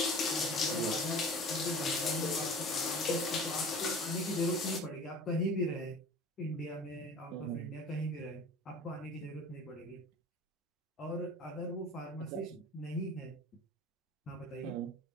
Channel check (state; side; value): normal; both; correlation 0.41